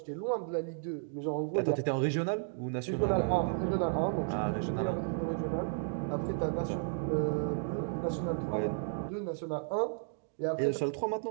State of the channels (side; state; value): left; silent; digital silence